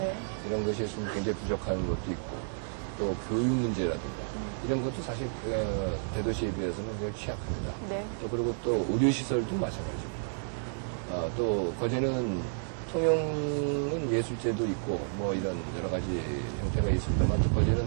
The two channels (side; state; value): left; silent; digital silence